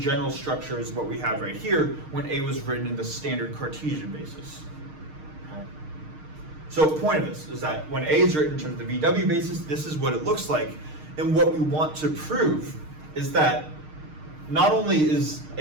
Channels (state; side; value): late; left; 6.5 ms